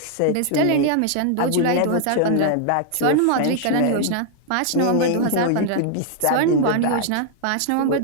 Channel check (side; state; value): both; different; correlation 0.00